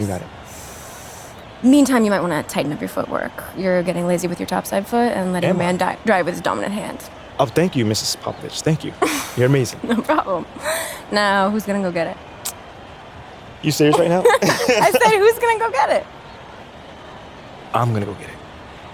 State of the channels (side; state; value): both; identical; correlation 1.00